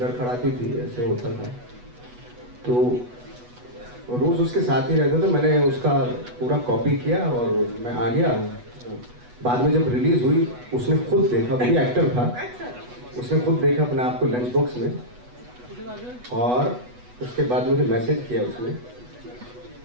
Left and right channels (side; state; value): left; late; 8.1 ms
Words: थी, ऐसे होता था, तो रोज उसके साथ ही रहता था। मैंने उसका पूरा कॉपी किया और मैं आ गया। बाद में जब रिलीज हुई उसने खुद देखा, वो भी एक्टर था, अच्छा। उसने खुद देखा अपने आप को लंच बॉक्स में, और उसके बाद मुझे मैसेज किया